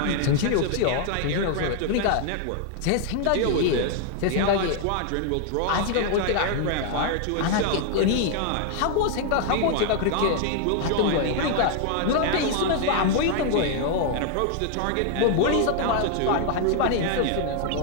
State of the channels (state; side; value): different; both; correlation 0.00